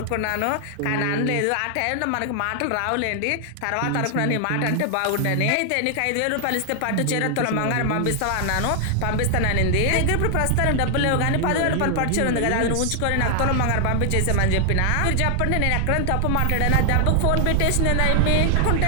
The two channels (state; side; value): different; both; correlation 0.00